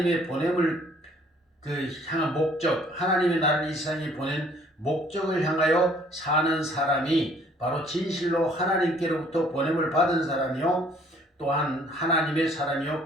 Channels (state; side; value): normal; both; correlation 0.59